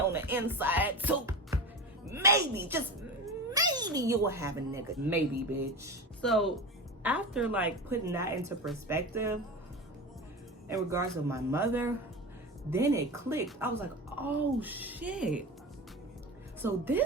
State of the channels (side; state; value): both; normal; correlation 0.27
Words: the inside, too. Maybe, just maybe you will have a nigga. Maybe, bitch. So, after, like, putting that into perspective, in regards to my mother, then it clicked. I was like, oh, shit. So,